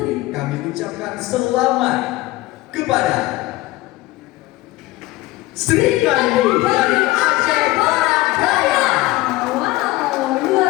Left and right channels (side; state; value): right; quieter; 18.8 dB